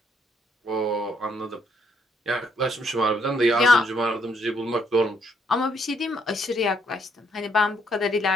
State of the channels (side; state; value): both; normal; correlation 0.71